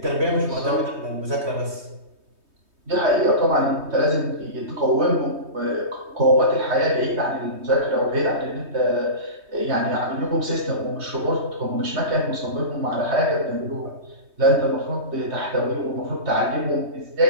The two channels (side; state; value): left; late; 3.2 ms